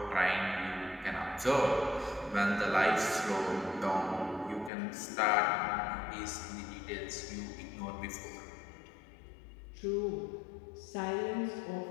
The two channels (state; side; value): drops out; right; at 4.7 s